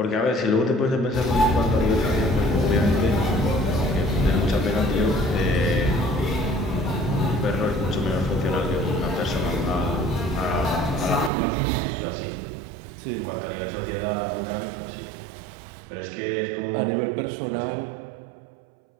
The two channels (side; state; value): left; drops out; at 11.3 s